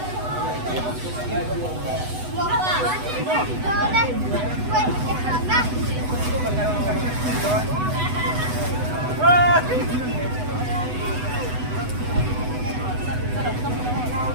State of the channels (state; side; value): late; left; 8.0 ms